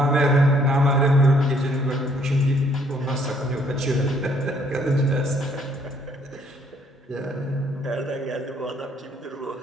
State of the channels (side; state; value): both; normal; correlation 0.65